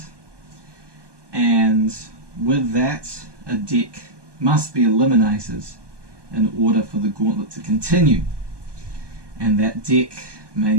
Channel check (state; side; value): late; left; 1.2 ms